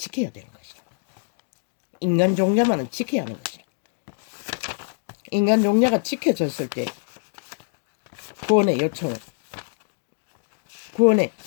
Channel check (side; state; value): right; silent; digital silence